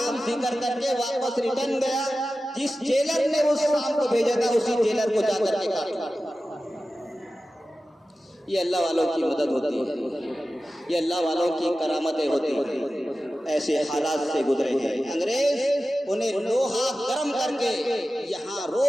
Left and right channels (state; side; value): normal; both; correlation 0.94